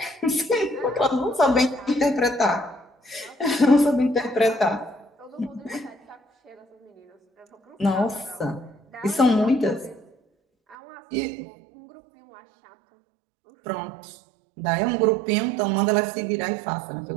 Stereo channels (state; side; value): drops out; left; at 10.8 s